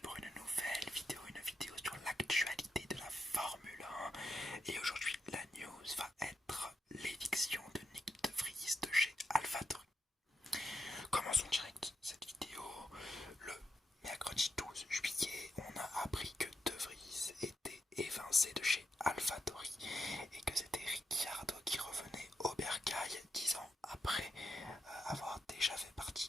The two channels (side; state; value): both; normal; correlation 0.83